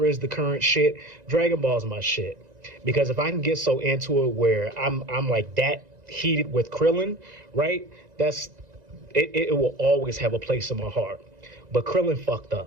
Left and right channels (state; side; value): late; left; 1.9 ms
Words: is the current shit, Dragon Ball is my shit. Because if I can get so into it where I'm like that heated with Krillin, right? It will always have a place in my heart. But Krillin fucked